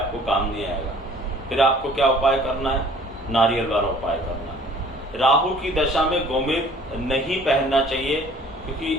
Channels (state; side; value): normal; both; correlation 0.53